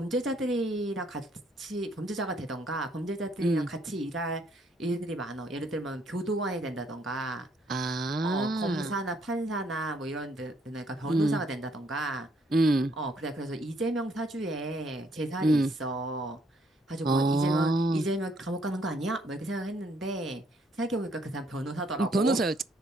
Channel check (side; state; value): both; normal; correlation 0.68